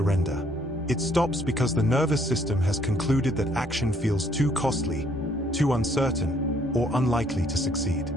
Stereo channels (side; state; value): both; normal; correlation 0.66